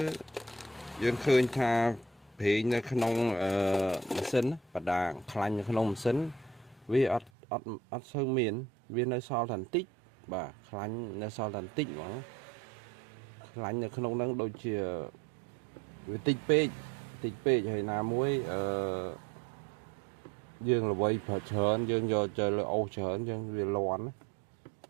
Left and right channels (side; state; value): left; drops out; at 7.3 s